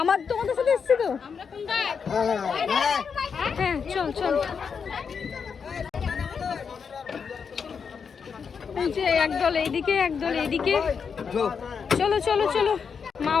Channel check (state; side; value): quieter; right; 6.2 dB